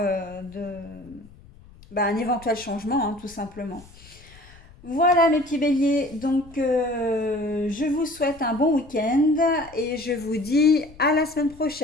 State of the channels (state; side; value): noise; left; rumble, 23 dB below the sound